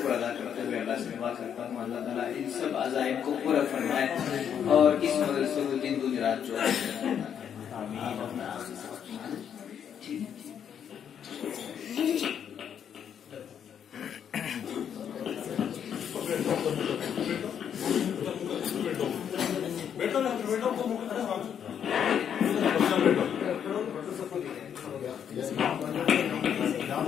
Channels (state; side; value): quieter; right; 8.5 dB